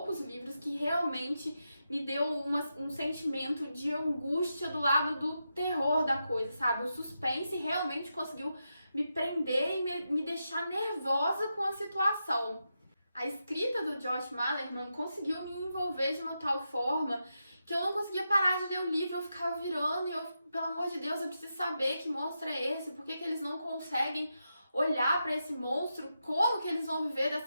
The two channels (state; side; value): inverted; both; correlation -0.87